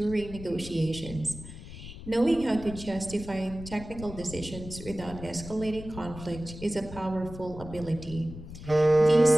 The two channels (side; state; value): left; noise; rumble, 13 dB below the sound